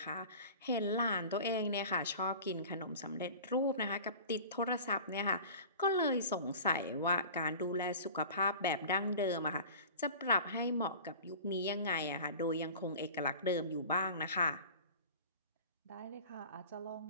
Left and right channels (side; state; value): both; inverted; correlation -0.39